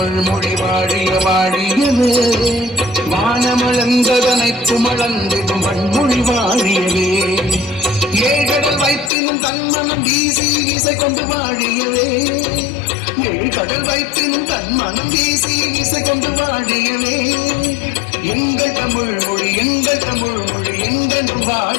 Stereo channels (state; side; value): drops out; right; at 9.1 s